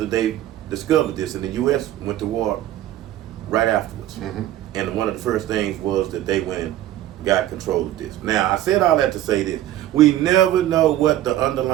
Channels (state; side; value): quieter; left; 13.2 dB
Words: they discovered this, and the U.S. went to war right afterwards. And one of the first things was that they went and got control of this. Now, I said all that to say this. We never know what the